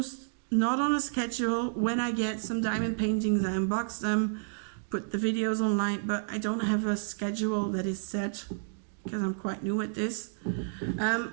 not on a schedule. When I get some diamond paintings, I unbox them, put the videos online, but I don't have a schedule that is set because I'm quite new at this.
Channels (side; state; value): left; silent; digital silence